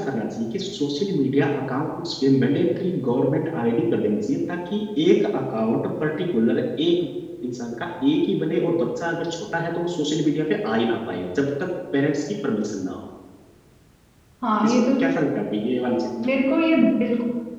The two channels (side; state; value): both; identical; correlation 1.00